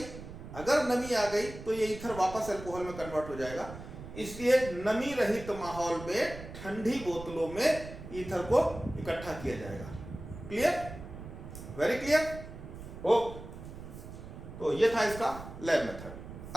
आ गई तो ये ईथर वापस अल्कोहल में कन्वर्ट हो जाएगा। इसलिए नमी रहित माहौल में ठंडी बोतलों में ईथर को इकट्ठा किया जाएगा। क्लियर? Very clear? ओके, तो ये था इसका लैब मेथड।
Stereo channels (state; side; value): noise; right; rumble, 12 dB below the sound